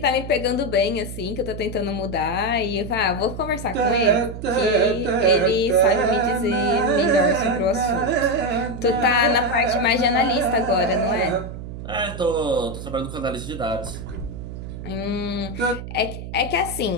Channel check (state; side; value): noise; right; hum, 10 dB below the sound